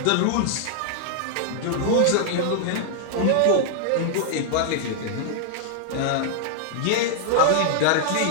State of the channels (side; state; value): both; different; correlation -0.01